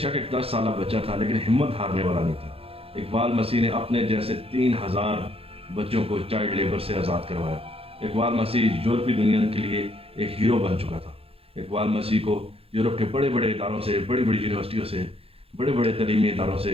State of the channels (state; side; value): late; left; 0.28 ms